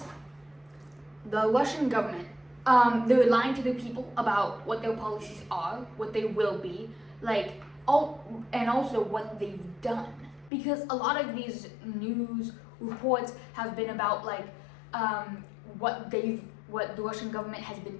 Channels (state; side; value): drops out; right; at 10.5 s